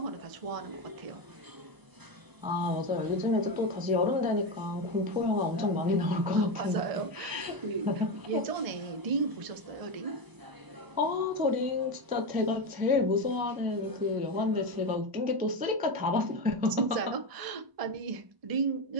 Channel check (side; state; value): left; late; 1.0 ms